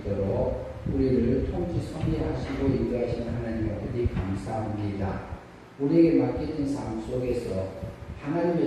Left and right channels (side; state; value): both; identical; correlation 1.00